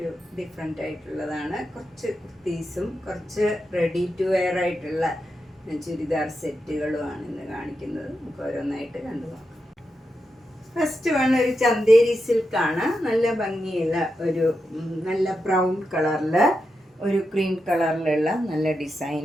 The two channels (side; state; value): both; normal; correlation 0.87